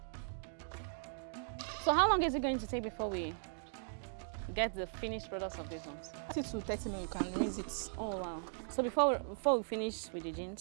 So how long is it going to take before we get the finished products of these ones? 30 to 30 minutes, you can rinse it. Oh wow. So before we finish with the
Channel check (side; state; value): left; silent; digital silence